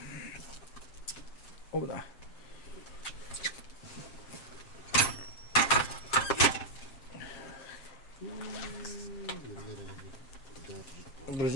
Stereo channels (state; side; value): late; right; 7.4 ms